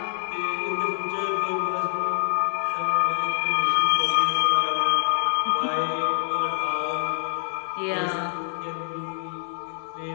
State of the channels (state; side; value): silent; right; 61 dB below the other